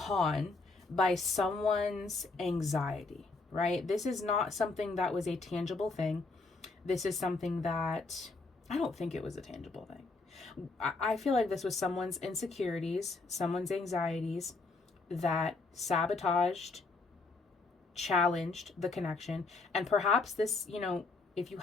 by someone's anxiety, right? This is not something that was a tangible thing. This is something that, I don't think it was a tangible thing. I feel like this was someone's insecurities, someone's anxieties that sabotaged, challenged the connection. And perhaps this, you know, if you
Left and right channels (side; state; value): right; quieter; 3.7 dB